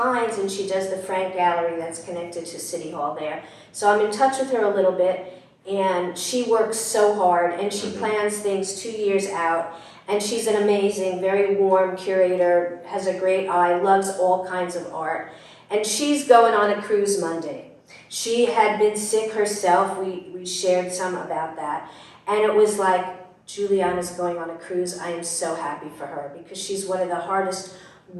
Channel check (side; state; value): both; identical; correlation 1.00